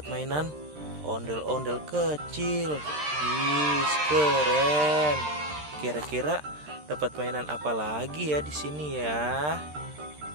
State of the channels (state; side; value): late; left; 13 ms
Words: mainan ondel-ondel kecil. Wih, keren. Kira-kira dapat mainan apa lagi ya di sini ya?